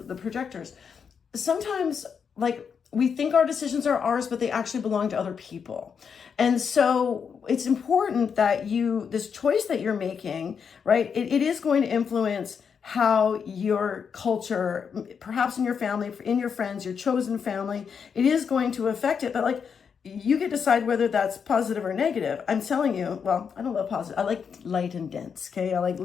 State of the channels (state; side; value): quieter; right; 6.6 dB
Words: the projectors, sometimes we think our decisions are ours, but they actually belong to other people. And so it's important that this choice that you're making, right, it is going to influence how your culture, perhaps in your family, in your friends, your chosen family, it is going to affect it. But you can decide whether that's positive or negative. I'm telling you, well, I don't love positive. I like light and dense, okay? I like